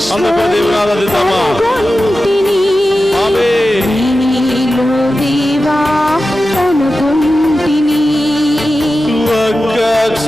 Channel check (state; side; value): noise; right; hum, 22 dB below the sound